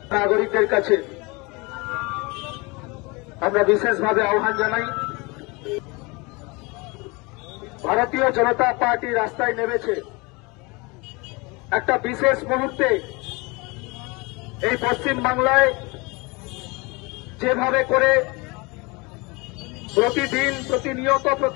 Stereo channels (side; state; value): right; quieter; 26.6 dB